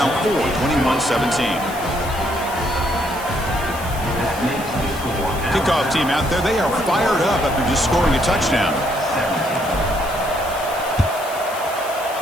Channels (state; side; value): noise; left; hiss, 15 dB below the sound